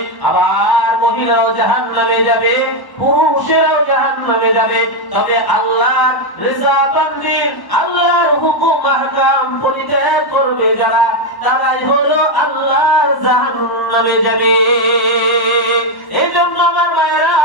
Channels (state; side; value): late; right; 1.1 ms